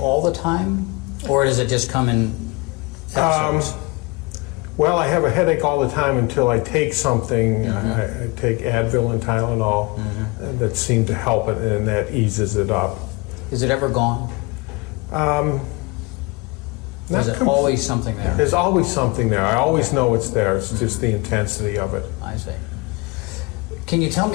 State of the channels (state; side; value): quieter; right; 26.4 dB